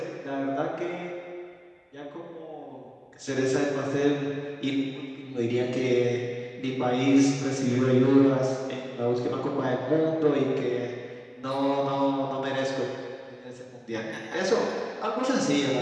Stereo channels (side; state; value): both; identical; correlation 1.00